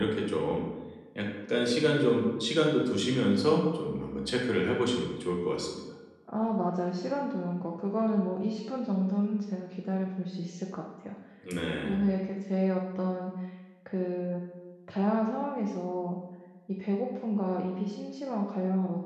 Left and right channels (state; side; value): identical; both; correlation 1.00